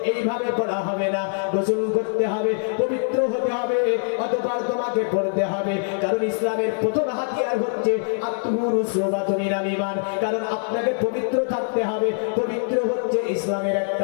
এইভাবে পড়া হবে না, গোসল করতে হবে, পবিত্র হতে হবে, অতঃপর তোমাকে পড়তে হবে। কারণ ইসলামের প্রথম হাতিয়ার হচ্ছে আত্মুরুসুবাতুমিনাল ঈমান, কারণ আপনাকে পবিত্র থাকতে হবে। পবিত্র হচ্ছে ইসলামের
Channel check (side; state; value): right; silent; digital silence